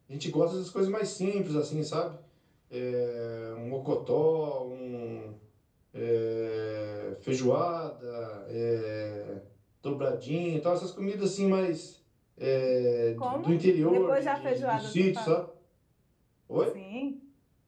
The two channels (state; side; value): identical; both; correlation 1.00